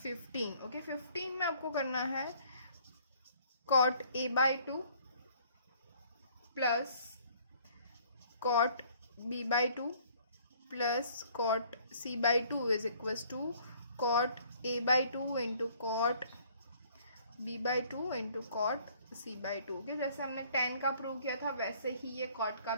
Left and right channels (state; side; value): inverted; both; correlation -0.59